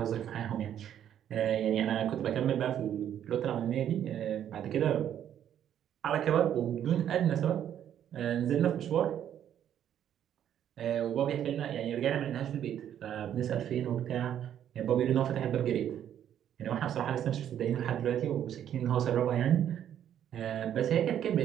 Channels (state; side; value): quieter; left; 10.1 dB